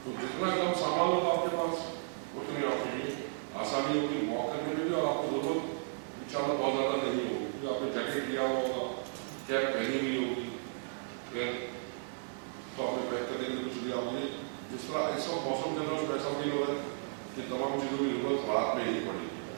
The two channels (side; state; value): left; silent; 55 dB below the other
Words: तो जितना कम सामान होगा आपके पास उतनी आपके लिए आसानी होगी वॉक करने में भी और आपको जरूरत इंशाल्लाह बहुत ज़्यादा नहीं होगी क्योंकि आपने जैकेट लिया हुआ होगा, कैप पहनी हुई होगी, फिर तो आपने पैक करने के लिए कुछ लिया होगी। जिस तरह इस वक्त मौसम के अंदर ऐसा फील हो रहा है कि तमाम चीज़ों की जरूरत रात में ही पड़ेगी।